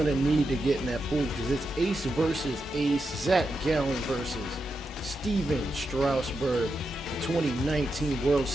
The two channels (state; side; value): normal; both; correlation 0.86